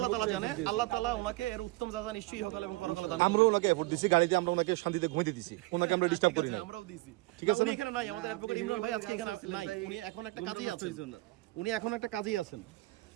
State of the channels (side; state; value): left; quieter; 21.0 dB